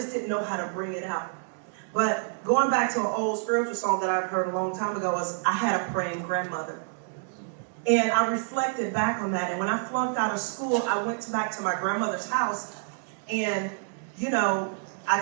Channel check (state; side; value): silent; left; 57 dB below the other